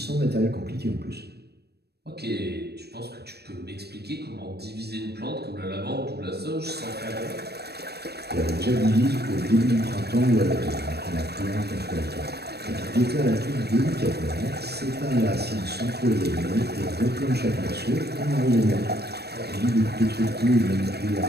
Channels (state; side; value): late; left; 0.47 ms